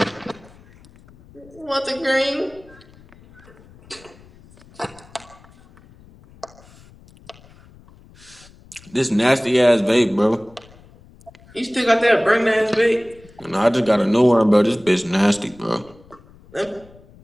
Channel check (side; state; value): left; noise; rumble, 25 dB below the sound